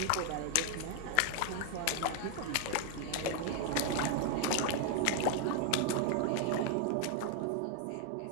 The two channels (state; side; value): different; both; correlation 0.00